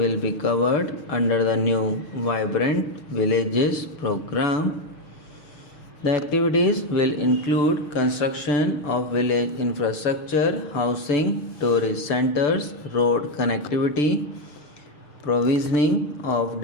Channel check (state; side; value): late; right; 6.9 ms